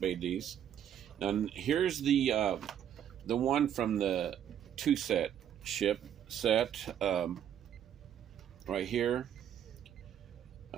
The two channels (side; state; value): left; quieter; 9.7 dB